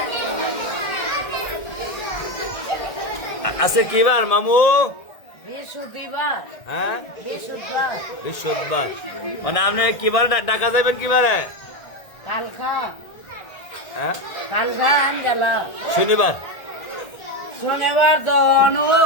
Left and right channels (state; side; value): late; right; 1.6 ms